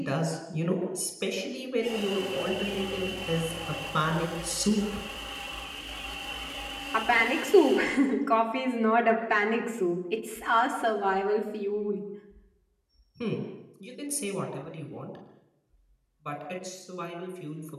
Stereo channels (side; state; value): both; identical; correlation 1.00